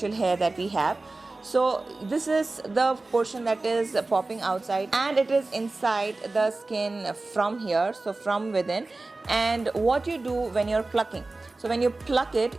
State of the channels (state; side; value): quieter; left; 3.2 dB